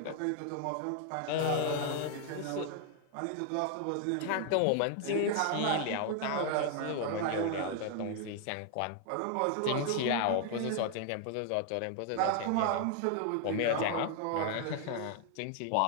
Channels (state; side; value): different; both; correlation 0.00